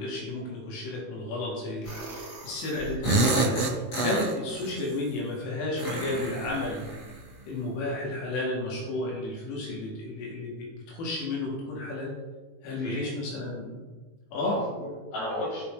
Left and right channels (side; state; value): right; late; 18 ms